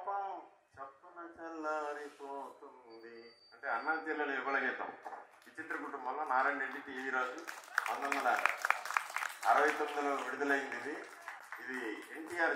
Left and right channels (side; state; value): both; identical; correlation 1.00